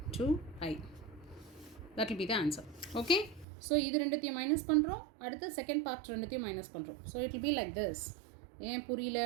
2i. That will be the answer. Okay, so இது ரெண்டுத்தையும் மைனஸ் பண்ணுறோம், அடுத்து செகண்ட் பார்ட் ரெண்டுத்தையும் மைனஸ் பண்ணுறோம். So it will be like this. ஏன் புரியல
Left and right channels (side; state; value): left; drops out; at 3.5 s